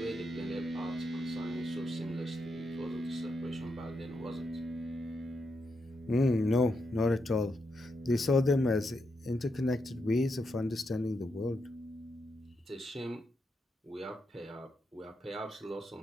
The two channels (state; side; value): normal; both; correlation 0.83